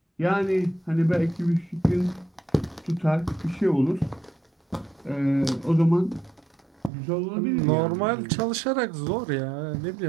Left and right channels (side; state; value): left; drops out; at 6.9 s